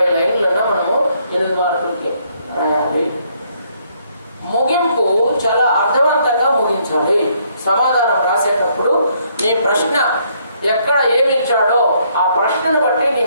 లైన్లన్నా మనము 8 మార్కులకి రాయాలి. ముగింపు చాలా అర్థవంతంగా ముగించాలి. సమాధానం రాసేటప్పుడు నీ ప్రశ్న ఎక్కడ ఏమి ఇచ్చాడో ఆ ప్రశ్నని బట్టి నీ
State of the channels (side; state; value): both; inverted; correlation -0.69